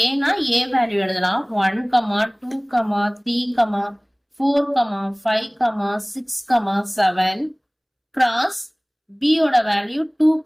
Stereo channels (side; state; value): both; identical; correlation 1.00